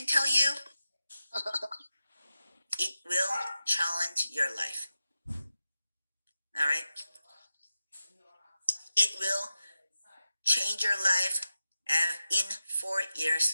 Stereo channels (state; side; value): inverted; both; correlation -0.91